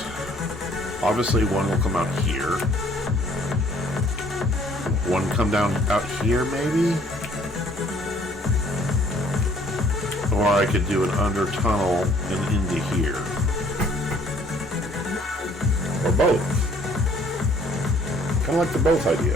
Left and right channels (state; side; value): normal; both; correlation 0.59